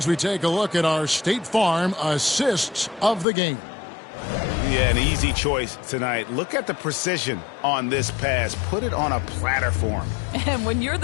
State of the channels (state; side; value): drops out; right; at 3.2 s